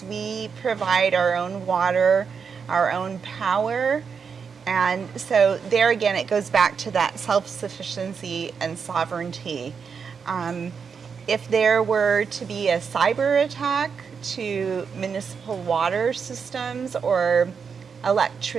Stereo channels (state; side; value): quieter; left; 6.1 dB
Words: we provide our own water, our own power. And so there again, it goes back to that self-sufficiency and sovereignty. If there were to be a cyber attack to municipal water systems or